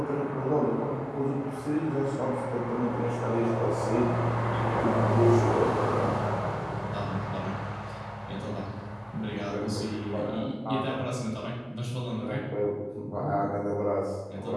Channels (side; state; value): both; identical; correlation 1.00